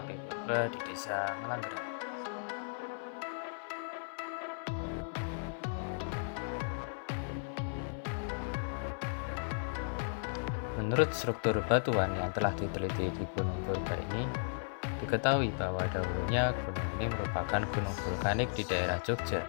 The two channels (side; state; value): right; silent; 54 dB below the other